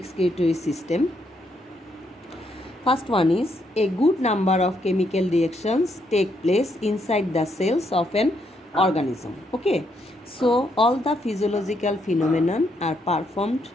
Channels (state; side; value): normal; both; correlation 0.76